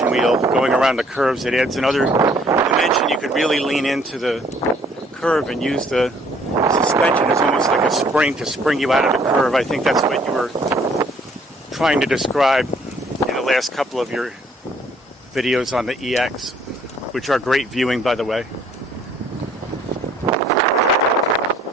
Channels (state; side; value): normal; both; correlation 0.61